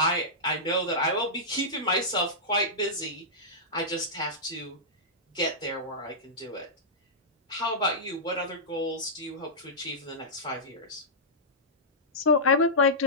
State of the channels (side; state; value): both; normal; correlation -0.14